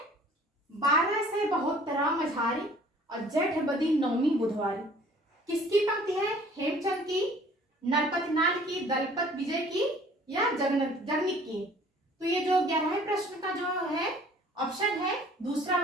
12 से 72 मझारी और जेठ बदी नौमी बुधवारी किसकी पंक्ति है? हेमचंद की, नरपतनाल की, दलपत विजय की या जगनीक की। तो ये जो 11वें प्रश्न का जो है ऑप्शन है दूसरा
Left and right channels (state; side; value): normal; both; correlation 0.53